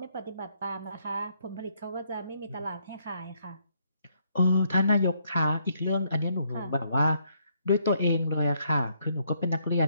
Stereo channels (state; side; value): inverted; both; correlation -0.72